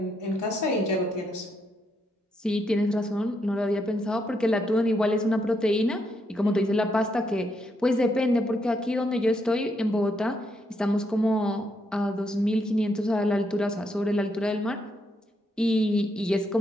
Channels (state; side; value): normal; both; correlation 0.77